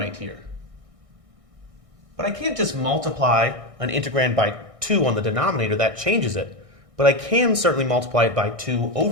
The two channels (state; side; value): late; left; 1.6 ms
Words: here. But I can't just multiply an integrand by 2 on the denominator, that changes it. But I can certainly multiply it by 2